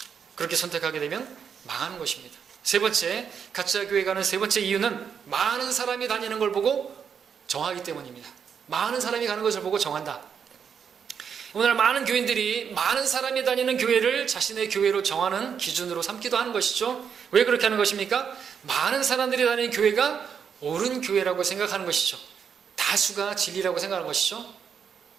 그렇게 선택하게 되면 망하는 것입니다. 세 번째, 가짜 교회 가는 세 번째 이유는 많은 사람이 다니는 걸 보고 정하기 때문입니다. 많은 사람이 가는 것을 보고 정한다. 오늘 많은 교인들이 많은 사람이 다니는 교회를 자신의 교회로 정하는 기준으로 삼기도 하는 것이죠. 왜 그렇게 하는 것입니까? 많은 사람들이 다니는 교회가 옳은 교회라고 생각하는 것이죠. 다수가 진리라고 생각하는 것이죠.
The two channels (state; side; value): quieter; left; 7.2 dB